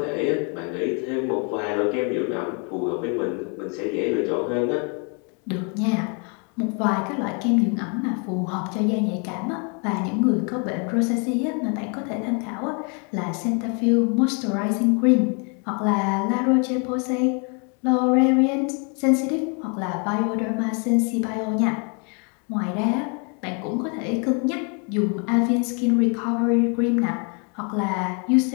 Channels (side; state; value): right; quieter; 36.5 dB